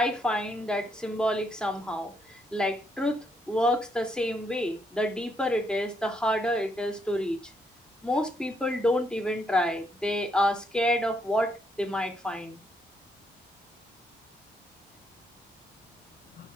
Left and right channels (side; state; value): both; normal; correlation 0.75